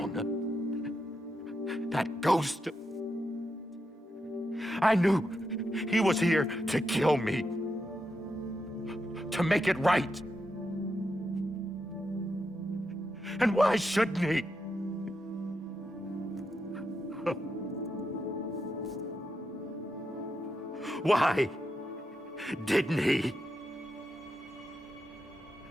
that ghost, I knew he was here to kill me, to make it right. And why shouldn't he? Why didn't he?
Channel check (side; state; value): both; normal; correlation 0.85